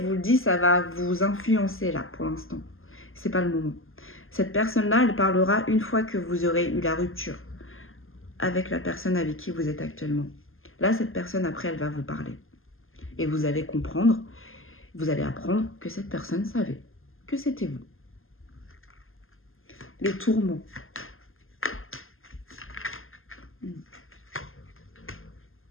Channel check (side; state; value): right; late; 0.60 ms